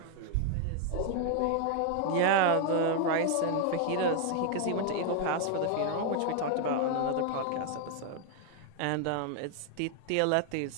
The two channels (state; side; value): different; both; correlation 0.00